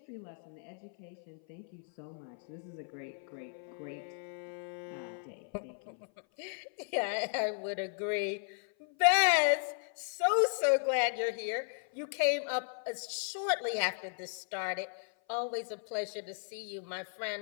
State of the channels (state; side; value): silent; right; 54 dB below the other